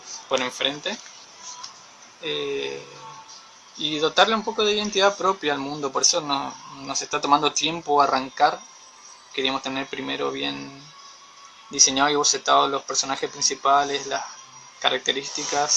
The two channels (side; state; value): both; identical; correlation 1.00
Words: por enfrente, y dotarle un poco de identidad propia al mundo. Por eso nos está tomando tiempo arrancar. Queríamos tener primero bien diseñado y bocetado los personajes principales, las